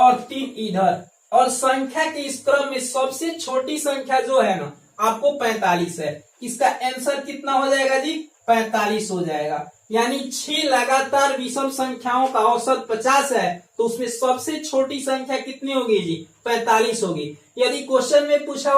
3 इधर, और संख्या के इस क्रम में सबसे छोटी संख्या जो है ना आपको 45 है। इसका आंसर कितना हो जाएगा जी 45 हो जाएगा। यानी 6 लगातार विषम संख्याओं का औसत 50 है, तो उसमें सबसे छोटी संख्या कितनी होगी जी 45 होगी। यदि क्वेश्चन में पूछा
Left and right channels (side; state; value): both; identical; correlation 1.00